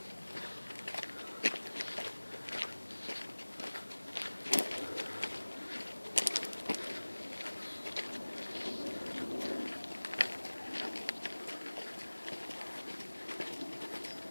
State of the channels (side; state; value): both; inverted; correlation -1.00